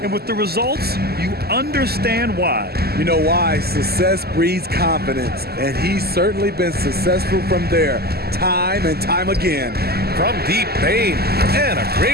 and with the results, you understand why. You know why? Success breeds confidence, and he's certainly been successful from there, time and time again. From deep, Bain, and a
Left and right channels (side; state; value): left; late; 0.46 ms